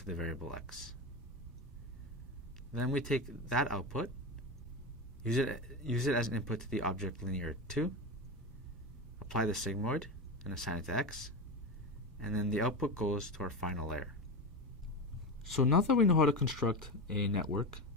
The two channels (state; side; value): normal; both; correlation 0.20